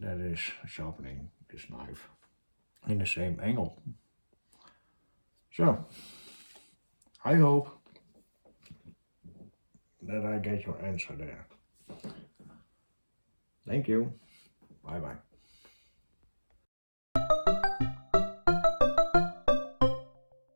is sharpening this knife in the same angle. So I hope that I get your answer there. Thank you. Bye bye.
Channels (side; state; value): both; inverted; correlation -1.00